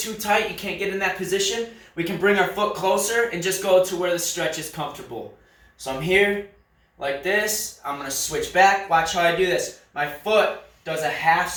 tight, you can't get in that position, we can bring our foot closer and just go to where the stretch is comfortable. So I'm here like this. I'm going to switch back. Watch how I do this. My foot does a half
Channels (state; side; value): identical; both; correlation 1.00